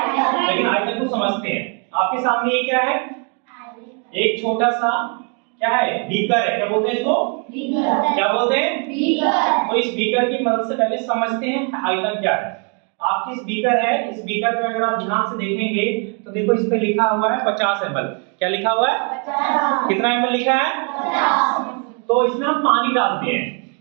लेकिन आयतन को समझते हैं। आपके सामने ये क्या है? एक छोटा सा क्या है? बीकर है। क्या बोलते हैं इसको? बीकर। क्या बोलते हैं? बीकर। तो इस बीकर की मदद से पहले समझते हैं आयतन क्या है। आपकी इस बीकर है, इस बीकर में अगर आप ध्यान से देखेंगे तो देखो इस पे लिखा हुआ है 50 ml। क्या लिखा हुआ है? 50। कितना ml लिखा है? 50। तो इसमें हम पानी डालते हैं,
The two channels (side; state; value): left; quieter; 38.7 dB